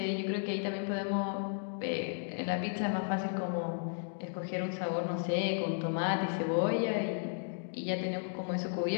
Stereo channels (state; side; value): silent; right; digital silence